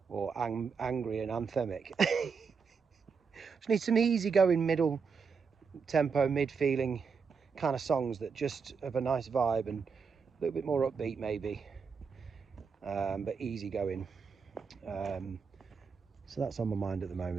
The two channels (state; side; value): quieter; left; 5.6 dB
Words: or angry and anthemic. Just need some easy-going middle tempo, mid-feeling kind of songs that just have a nice vibe and a little bit more upbeat maybe, but easy-going. So that's on my mind at the